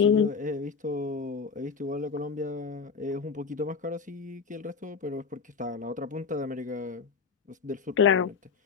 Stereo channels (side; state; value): right; quieter; 5.6 dB